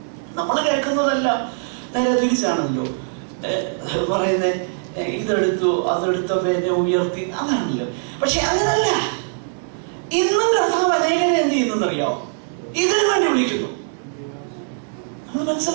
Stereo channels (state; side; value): silent; left; digital silence